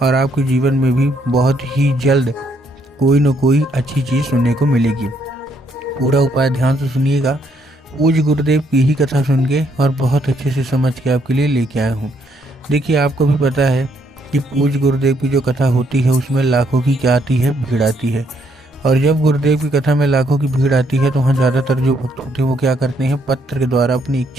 और आपके जीवन में भी बहुत ही जल्द कोई न कोई अच्छी चीज़ सुनने को मिलेगी। पूरा उपाय ध्यान से सुनिएगा। पूज्य गुरुदेव की ही कथा सुन के और बहुत अच्छे से समझ के आपके लिए लेके आया हूँ। देखिए, आपको भी पता है कि पूज्य गुरुदेव की जो कथा होती है उसमें लाखों की क्या आती है, भीड़ आती है। और जब गुरुदेव की कथा में लाखों की भीड़ आती है तो वहाँ ज़्यादातर जो भक्त होते हैं वो क्या करते हैं, पत्र के द्वारा अपनी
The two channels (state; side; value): normal; both; correlation 0.71